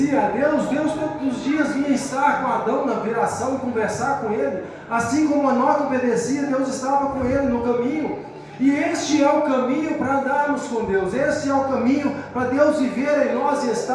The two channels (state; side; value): identical; both; correlation 1.00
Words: a Deus, Deus todos os dias vinha estar com Adão na viração, conversar com ele. Assim como Enoque obedecia, Deus estava com ele no caminho. E este é o caminho para andarmos com Deus. Este é o caminho para Deus viver em nós e